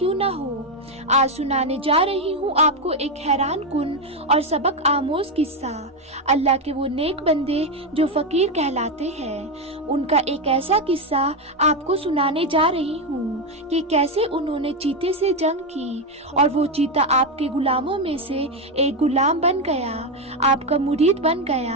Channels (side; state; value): both; normal; correlation 0.08